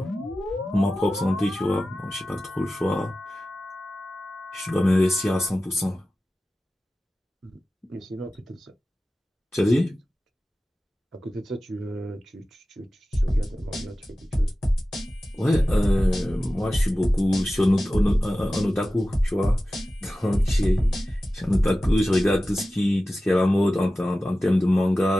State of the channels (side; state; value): both; normal; correlation 0.95